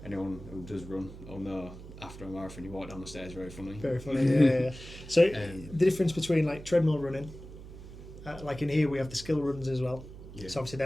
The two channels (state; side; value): noise; right; hum, 14 dB below the sound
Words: Anyone who does run will know after a marathon you walk down the stairs very funny. Very funny, yeah. So the difference between like treadmill running, like in here we have the skill runs as well. Yeah. So obviously